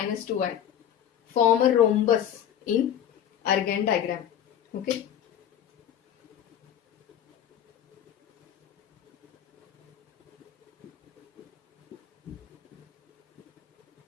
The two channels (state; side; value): quieter; right; 10.0 dB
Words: 2i form a rhombus in Argand diagram. Okay.